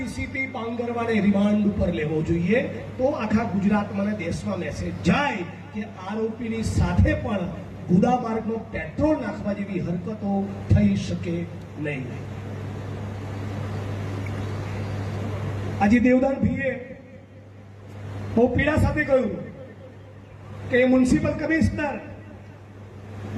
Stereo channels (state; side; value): identical; both; correlation 1.00